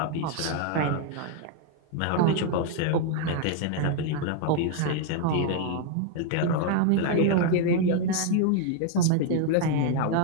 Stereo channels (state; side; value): different; both; correlation 0.00